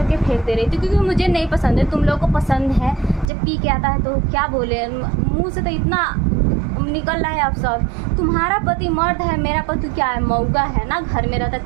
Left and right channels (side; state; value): left; drops out; at 3.3 s